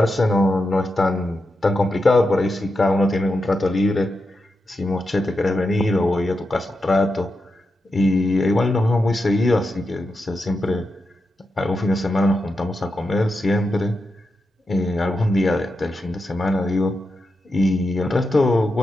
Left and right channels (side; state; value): both; normal; correlation 0.87